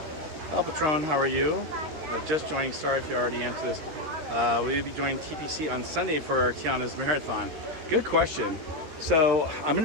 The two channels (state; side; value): late; left; 13 ms